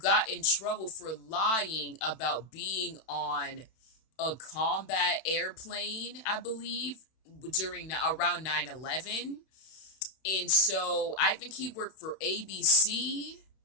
in trouble for lying about being on a combat airplane, I believe, around 9/11. And so I think he worked for ABC.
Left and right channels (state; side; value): late; right; 32 ms